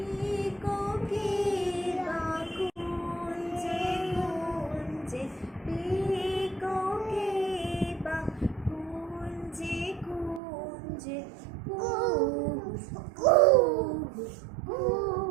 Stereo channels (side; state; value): left; drops out; at 10.4 s